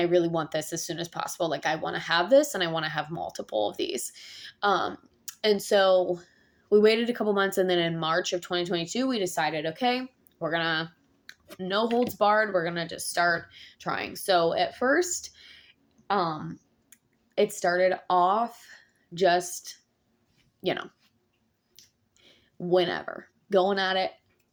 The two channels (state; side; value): identical; both; correlation 1.00